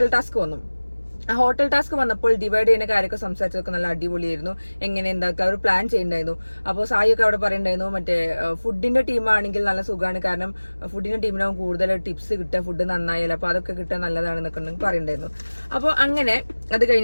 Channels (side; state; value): both; inverted; correlation -1.00